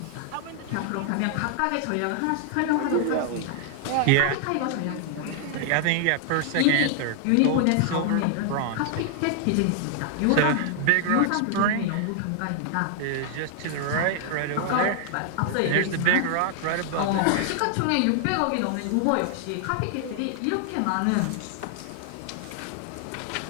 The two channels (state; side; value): different; both; correlation 0.00